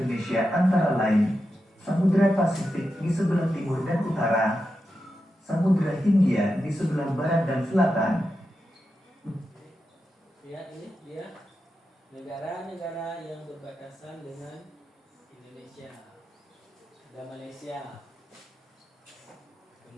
antara lain Samudra Pasifik di sebelah timur dan utara, Samudra Hindia di sebelah barat dan selatan. Lihat ini dia negara-negara yang berbatasan dengan Indonesia. Ada Malaysia,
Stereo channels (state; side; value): normal; both; correlation 0.89